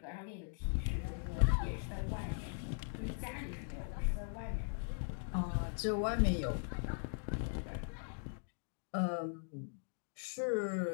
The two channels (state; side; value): silent; right; digital silence